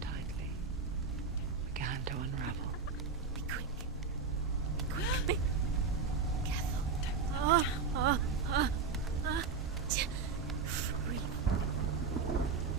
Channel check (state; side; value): quieter; left; 5.1 dB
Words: tightly began to unravel. Be quick. Be careful.